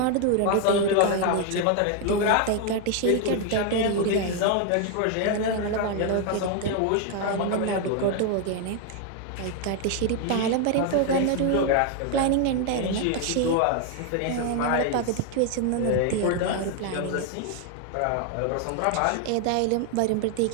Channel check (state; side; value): different; both; correlation 0.01